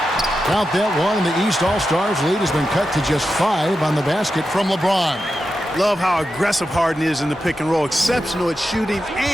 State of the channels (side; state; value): both; normal; correlation 0.90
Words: Count that one, and the East All-Stars lead has been cut to just 5 on the basket from LeBron. Love how aggressive Harden is in the pick and roll. Exceptional at shooting